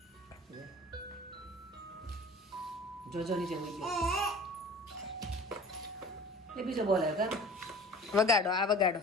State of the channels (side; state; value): both; normal; correlation 0.43